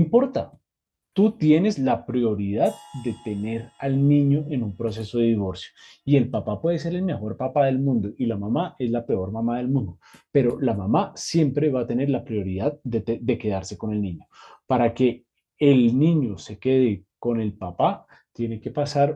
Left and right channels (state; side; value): identical; both; correlation 1.00